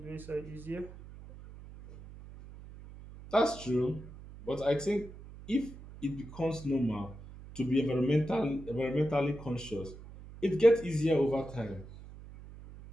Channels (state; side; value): noise; right; hum, 16 dB below the sound